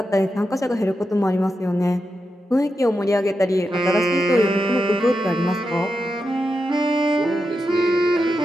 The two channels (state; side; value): normal; both; correlation 0.87